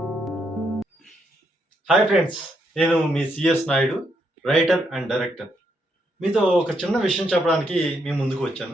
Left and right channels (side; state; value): both; normal; correlation 0.77